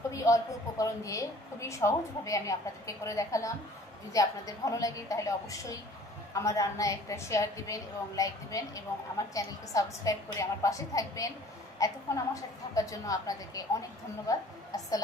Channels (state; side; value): normal; both; correlation 0.51